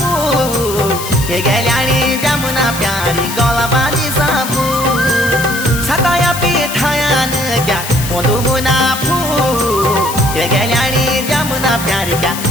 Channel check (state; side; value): noise; left; hiss, 8 dB below the sound